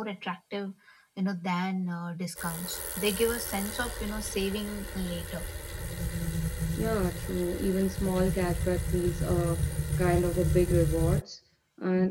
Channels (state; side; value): identical; both; correlation 1.00